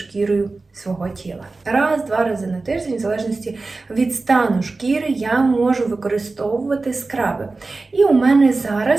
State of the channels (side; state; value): left; quieter; 3.6 dB